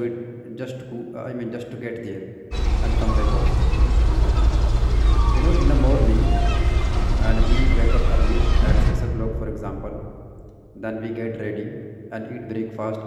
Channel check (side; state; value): both; identical; correlation 1.00